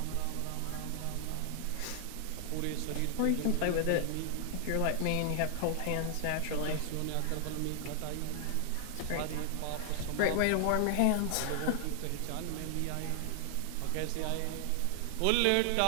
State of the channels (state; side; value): different; both; correlation 0.00